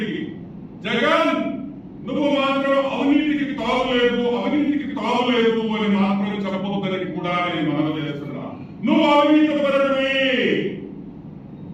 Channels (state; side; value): identical; both; correlation 1.00